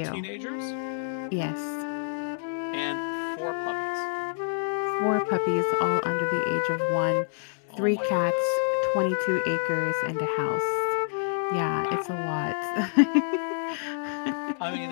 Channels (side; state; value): right; silent; digital silence